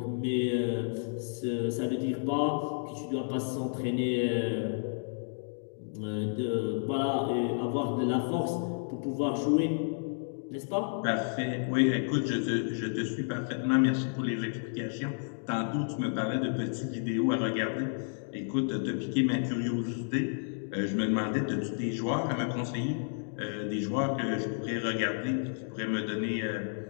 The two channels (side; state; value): right; silent; digital silence